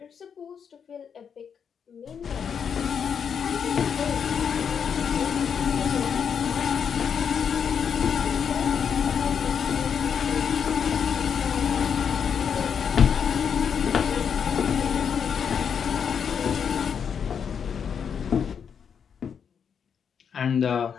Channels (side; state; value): right; quieter; 7.2 dB